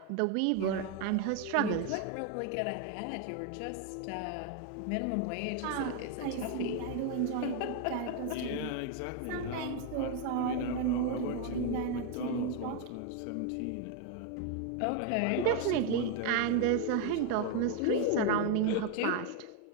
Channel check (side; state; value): both; different; correlation 0.01